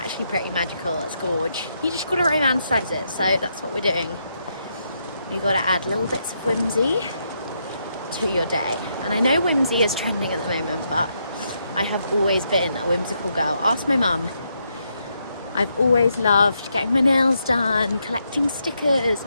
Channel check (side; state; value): both; inverted; correlation -0.79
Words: pretty magical. It's gorge. You just got to romanticize it. So that's what we're doing. You've got to add little bits of whimsy to your day. And I know whimsy is trending at the moment, but I have always been a whimsical girl. Ask my mum. I've always loved getting my nails done, collecting stickers,